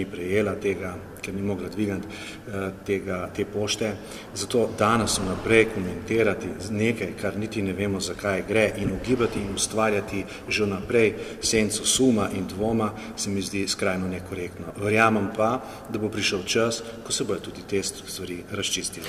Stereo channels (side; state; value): both; identical; correlation 1.00